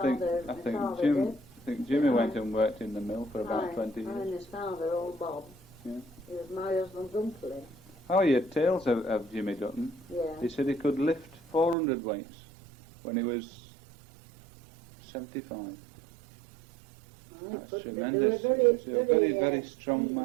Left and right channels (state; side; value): drops out; left; at 11.8 s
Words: Jim. did. I think Jimmy Aye. went and worked in the mill for about Aye, 20 aye, years. and his father, old Bob. Yeah. He was my husband's uncle. Oh, he had tales of Jimmy Dutton. Yeah. He said he could lift 400 weights when he was 75. That's tremendous. They were He was a very strong